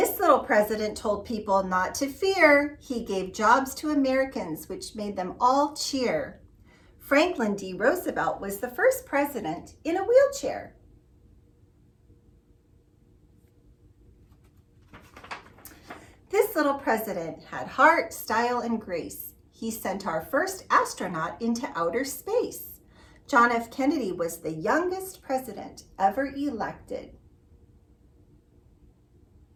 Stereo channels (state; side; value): identical; both; correlation 1.00